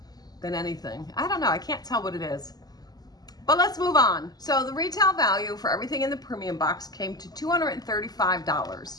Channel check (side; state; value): right; late; 0.19 ms